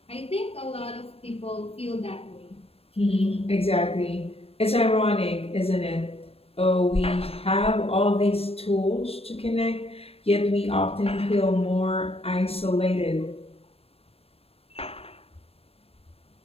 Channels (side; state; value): right; late; 0.28 ms